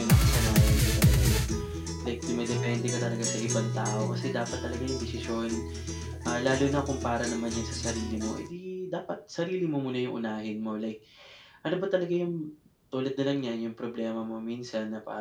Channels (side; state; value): both; identical; correlation 1.00